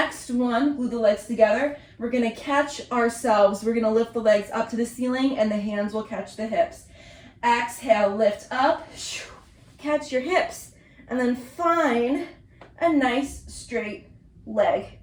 one, glue the legs together. We're gonna catch ourselves. We're gonna lift the legs up to the ceiling and the hands will catch the hips. Exhale, lift up, catch your hips, and then find a nice straight leg.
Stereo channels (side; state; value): both; identical; correlation 1.00